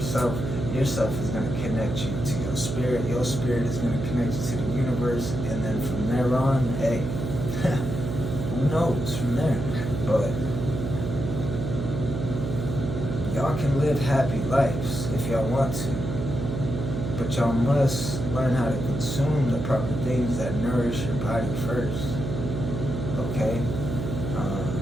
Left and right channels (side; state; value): right; noise; hum, 3 dB below the sound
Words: Yourself is gonna connect you to your spirit. Your spirit is gonna connect you to the universe. And then from there on, hey, who knows from there? But y'all can live happy lives if y'all want to. But y'all must learn how to consume the proper things that nourish your body first. Okay?